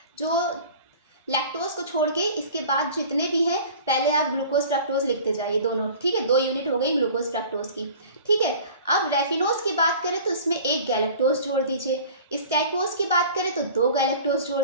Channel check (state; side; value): inverted; both; correlation -0.43